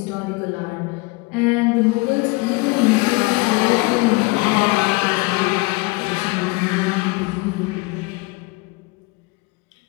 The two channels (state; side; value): quieter; right; 25.0 dB